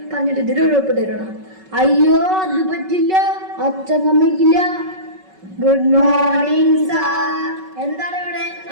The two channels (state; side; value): late; left; 5.3 ms